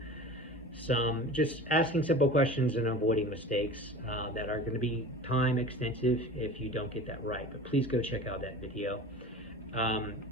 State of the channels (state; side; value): normal; both; correlation 0.36